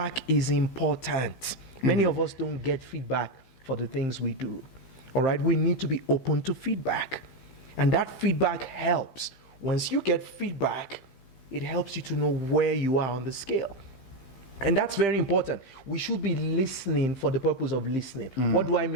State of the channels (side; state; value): right; late; 15 ms